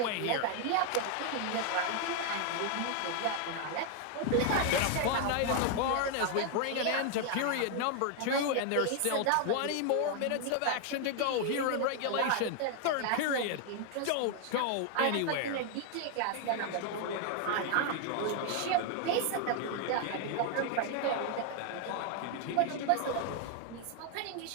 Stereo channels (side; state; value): both; different; correlation 0.00